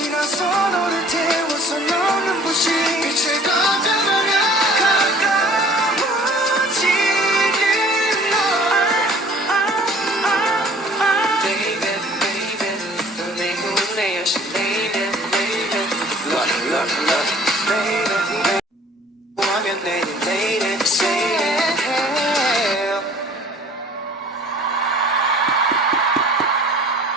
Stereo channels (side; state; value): both; normal; correlation 0.51